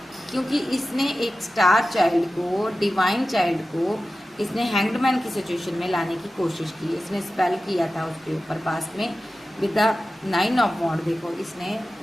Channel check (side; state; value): both; normal; correlation 0.94